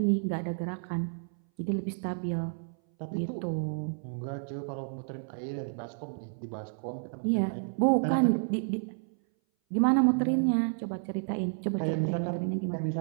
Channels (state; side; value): silent; left; 57 dB below the other